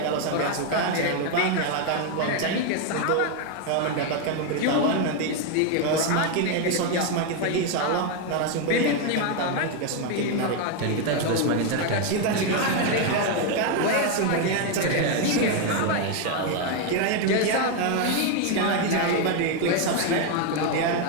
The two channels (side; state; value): both; different; correlation 0.01